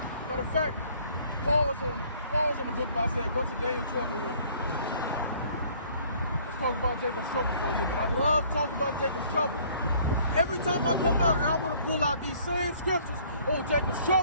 Matter of fact, pause on the book by saying, go to Daniel 12 and 11. Let's talk about Jacob's trouble for a little bit. I love talking about Jacob's trouble. Every time I come out here, I want to pull out these same scriptures. Oh, Jacob's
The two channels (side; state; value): both; inverted; correlation -0.58